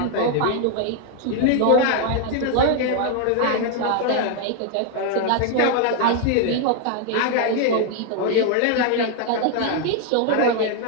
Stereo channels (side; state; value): both; different; correlation 0.00